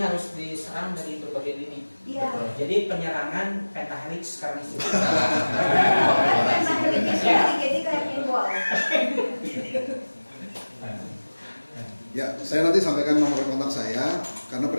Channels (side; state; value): both; inverted; correlation -1.00